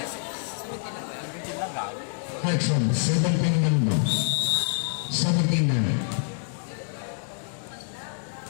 Clarkson, 17 lang daw. 17 na.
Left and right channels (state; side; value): silent; right; digital silence